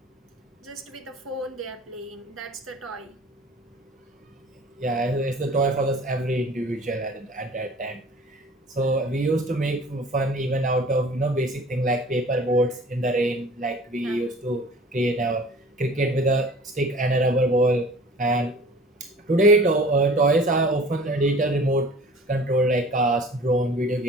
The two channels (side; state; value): both; normal; correlation 0.46